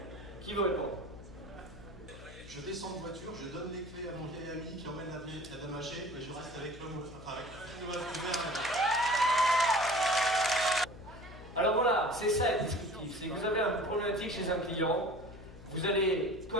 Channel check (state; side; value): noise; left; hum, 16 dB below the sound